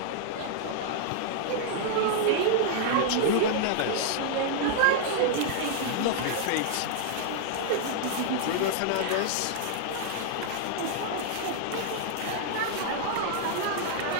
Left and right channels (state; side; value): different; both; correlation -0.01